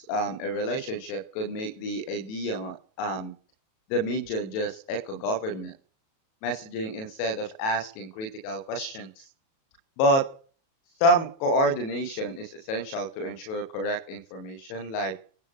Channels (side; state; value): right; late; 37 ms